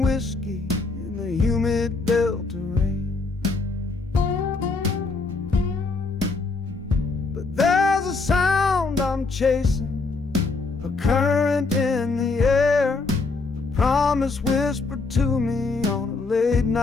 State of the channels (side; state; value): right; quieter; 3.9 dB